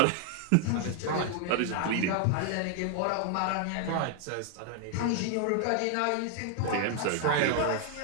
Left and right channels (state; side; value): different; both; correlation 0.00